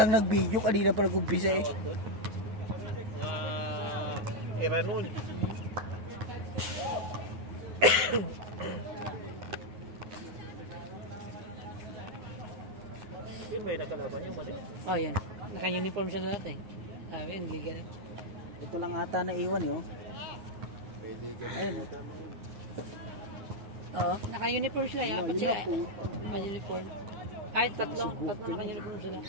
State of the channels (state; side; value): late; left; 9.5 ms